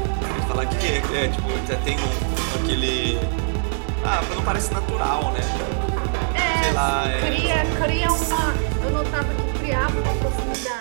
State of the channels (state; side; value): silent; left; digital silence